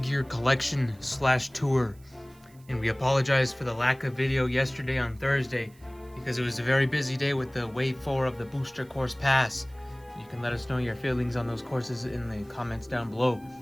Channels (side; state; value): right; noise; hiss, 29 dB below the sound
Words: collection / tour. And we apologize for the lack of video yesterday on Thursday because it was a very busy day with the Wave 4 of the Booster Course Pass. You can let us know your feelings on those courses in the comments down below.